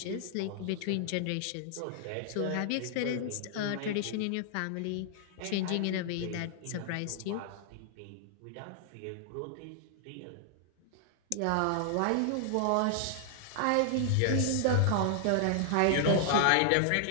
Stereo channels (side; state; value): both; different; correlation 0.00